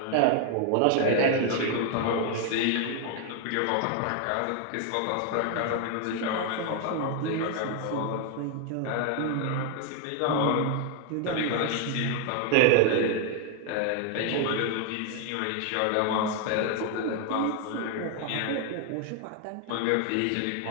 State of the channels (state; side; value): different; both; correlation 0.00